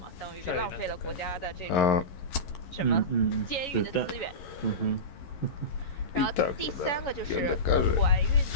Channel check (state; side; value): late; right; 11 ms